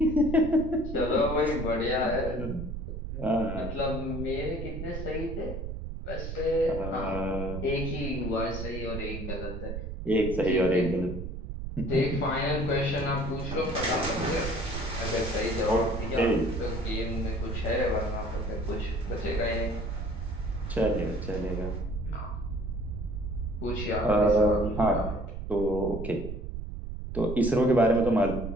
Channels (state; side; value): noise; right; rumble, 6 dB below the sound